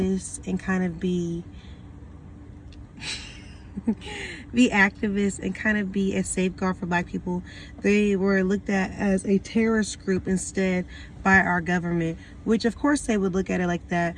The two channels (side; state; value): both; identical; correlation 1.00